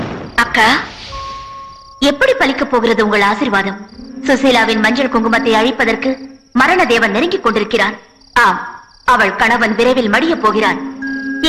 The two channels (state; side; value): identical; both; correlation 1.00